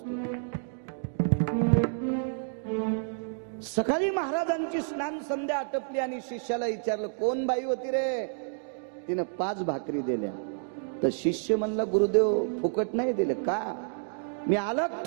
सकाळी महाराजांची स्नान संध्या आटपली आणि शिष्याला विचारलं कोण बाई होती रे तिनं 5 भाकरी दिल्या तर शिष्य म्हणला गुरुदेव फुकट नाही दिले का मी अलग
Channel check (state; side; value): silent; left; digital silence